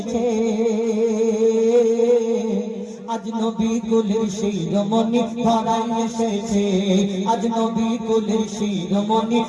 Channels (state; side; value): identical; both; correlation 1.00